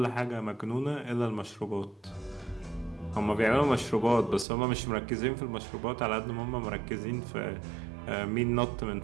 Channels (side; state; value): left; drops out; at 4.5 s